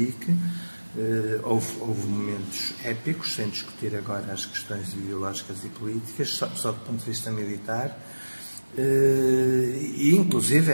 Houve momentos épicos, sem discutir agora as questões ideológicas e políticas, só do ponto de vista militar. E inclusive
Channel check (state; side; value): inverted; both; correlation -1.00